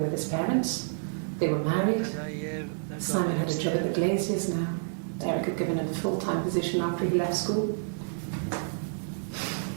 with his parents. They were married. Anna et Eve. D'accord. Simon had a job at the Glaziers now. Eric had given him a full-time position after he left school.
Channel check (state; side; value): silent; left; digital silence